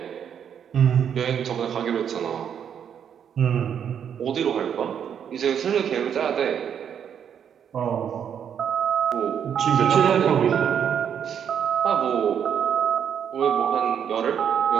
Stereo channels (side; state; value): left; quieter; 8.3 dB